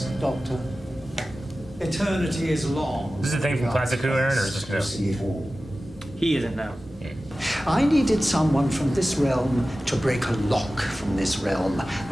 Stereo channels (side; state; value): both; normal; correlation 0.95